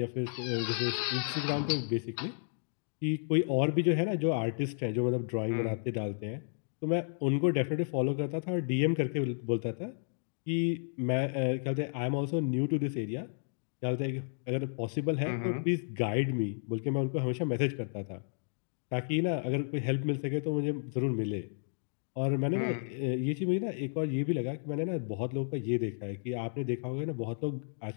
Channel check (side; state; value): right; silent; digital silence